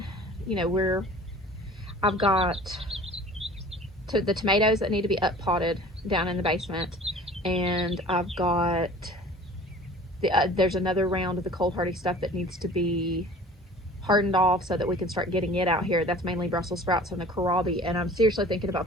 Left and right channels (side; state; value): both; normal; correlation 0.45